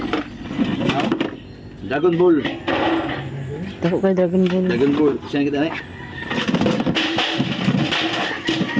Dragon Ball. Tako kay Dragon Ball. Dragon Ball. Siya kita na eh.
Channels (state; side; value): identical; both; correlation 1.00